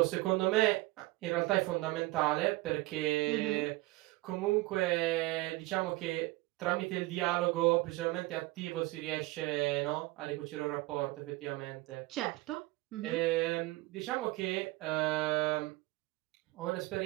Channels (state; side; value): quieter; left; 20.4 dB